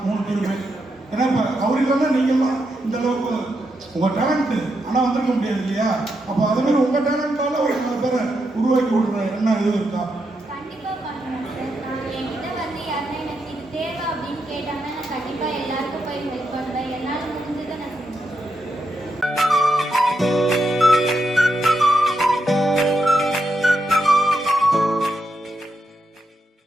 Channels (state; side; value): normal; both; correlation 0.83